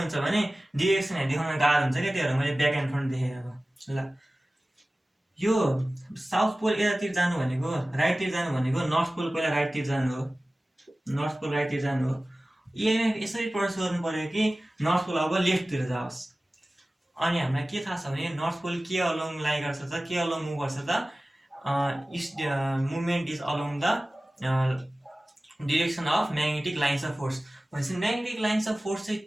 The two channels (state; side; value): normal; both; correlation 0.97